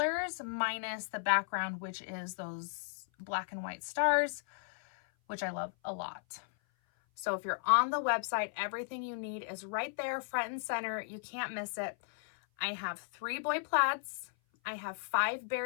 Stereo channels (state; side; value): silent; right; 54 dB below the other